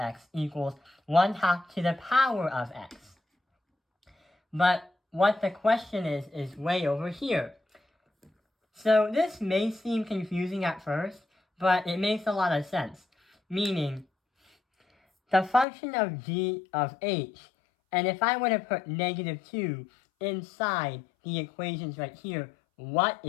equals 1/2 to the power of x. But what the question is way over here. So this may seem confusing at first, but it makes a lot of sense. Meaning, the function of g of h, and if I were to put negative 2 inside the equations right here, what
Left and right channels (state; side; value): drops out; right; at 15.7 s